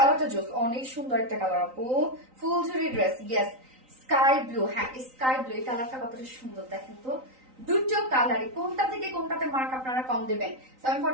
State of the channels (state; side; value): late; left; 3.9 ms